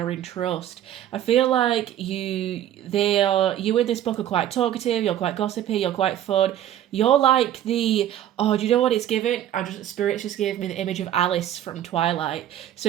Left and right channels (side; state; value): left; quieter; 11.5 dB